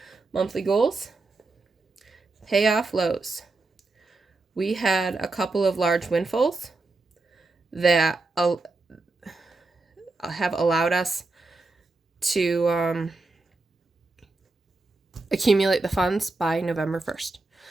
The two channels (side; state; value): left; quieter; 3.3 dB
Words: monthly goals, pay off lows. We had a couple of large windfalls that have allowed us to accumulate the funds by November 1st.